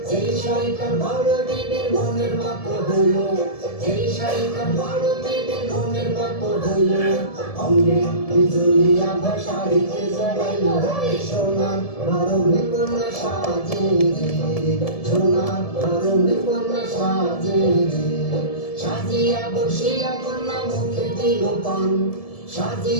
যেই শাড়িটা বড় দেবীর মনের মতো হইল, যেই শাড়িটা বড় দেবীর মনের মতো হইল। অঙ্গে বিজলি আভা শাড়িতে জড়াইল। সোনার বরণী কন্যা সাজে রে, সোনার বরণী কন্যা সাজে রে। সাজিয়া বসিয়া কন্যা মুখে দিল পান,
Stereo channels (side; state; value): right; late; 1.7 ms